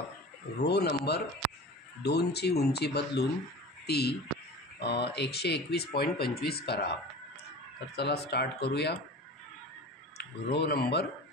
रो नंबर 2ची उंची बदलून ती 121.25 करा। तर चला स्टार्ट करूया। रो नंबर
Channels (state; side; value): normal; both; correlation 0.36